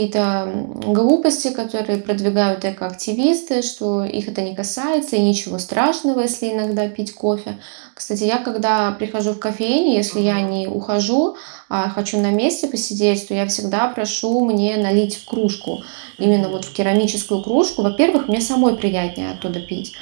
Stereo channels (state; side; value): silent; left; digital silence